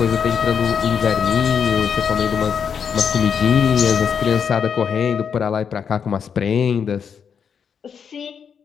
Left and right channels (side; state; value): right; quieter; 7.1 dB